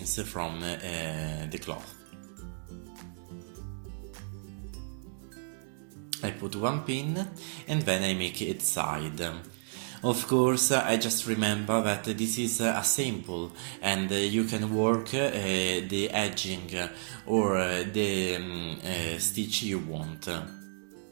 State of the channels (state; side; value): silent; left; digital silence